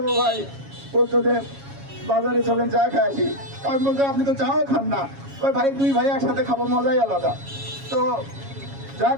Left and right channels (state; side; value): late; left; 7.2 ms